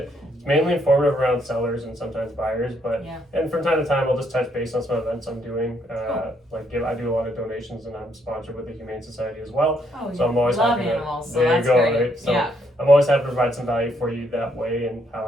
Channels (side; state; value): both; normal; correlation 0.72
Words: It's mainly informative around sellers and sometimes buyers, but and from time to time I'll just touch base on some events I'm doing. I do a lot of donations, and I'm sponsored with the Humane Society as well. So I'm always happy animals. So there you go, right? So I'm always happy to provide some value for you that way and how